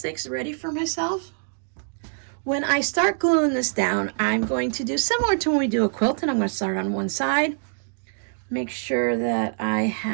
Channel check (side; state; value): left; silent; digital silence